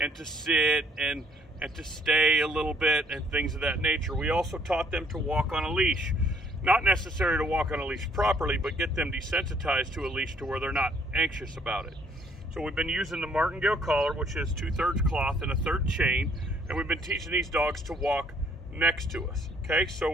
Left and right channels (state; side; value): normal; both; correlation 0.64